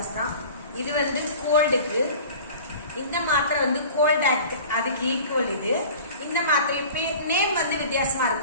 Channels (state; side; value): inverted; both; correlation -0.41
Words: தான். இது கோல்டுக்கு. இந்த மாத்திரை கோல்ட் ஆக்ட், அதுக்கு ஈக்குவல். இது இந்த மாத்திரை நேம் வித்தியாசமா